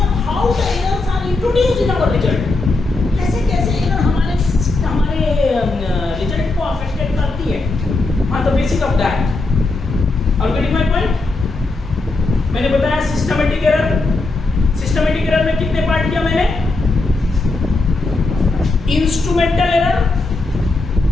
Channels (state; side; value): quieter; right; 3.3 dB